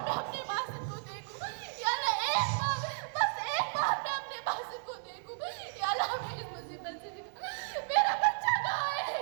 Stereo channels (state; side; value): silent; left; 55 dB below the other